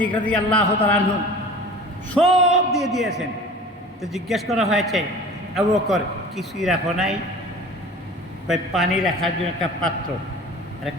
রাদিয়াল্লাহু তাআলা আনহু সব দিয়ে দিয়েছেন। তো জিজ্ঞেস করা হয়েছে, আবু বকর কিছুই রাখো নাই? পানি রাখার জন্য একটা পাত্র আর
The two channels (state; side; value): normal; both; correlation 0.41